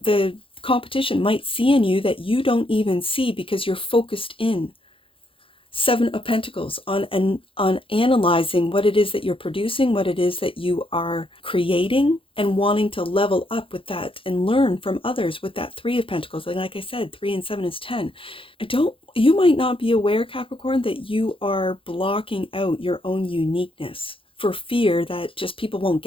competition might see in you that you don't even see because you're focused in. Seven of Pentacles on analyzing what it is that you're producing, what it is that you are creating, and wanting to level up with that and learn from others with that Three of Pentacles. Like I said, 3 and 7 is 10. You might not be aware, Capricorn, that you are blocking out your own uniqueness for fear that just people won't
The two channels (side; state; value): right; late; 0.26 ms